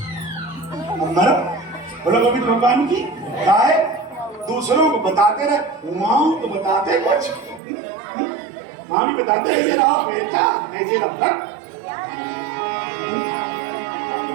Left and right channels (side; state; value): left; drops out; at 7.6 s